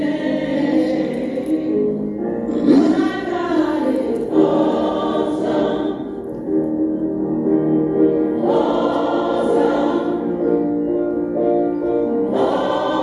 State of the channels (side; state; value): both; identical; correlation 1.00